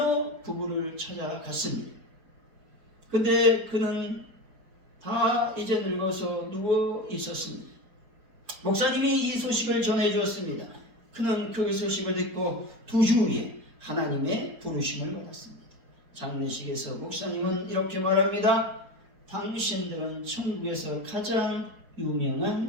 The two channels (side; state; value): left; late; 4.4 ms